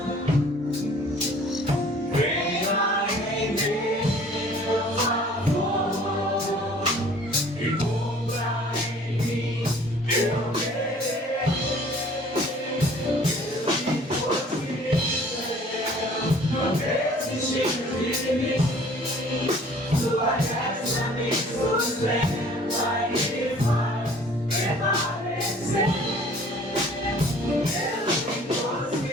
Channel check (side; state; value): both; normal; correlation 0.52